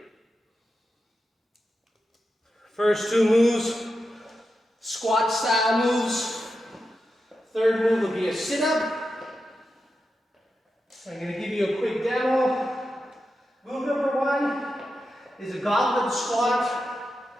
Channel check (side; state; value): both; normal; correlation 0.89